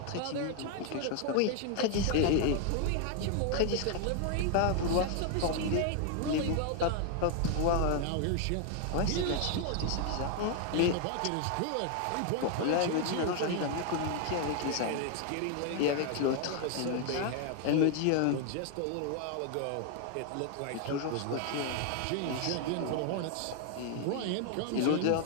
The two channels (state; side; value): different; both; correlation 0.00